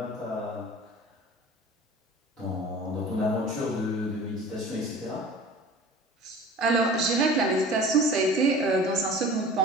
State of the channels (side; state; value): both; normal; correlation 0.42